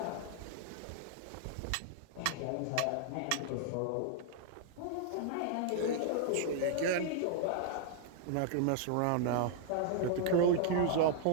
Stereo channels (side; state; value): both; different; correlation -0.01